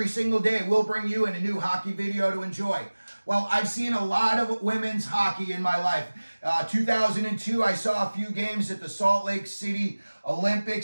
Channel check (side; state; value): both; inverted; correlation -1.00